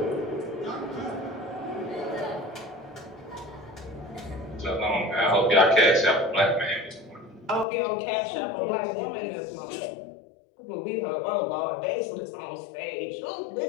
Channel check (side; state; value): right; drops out; at 7.7 s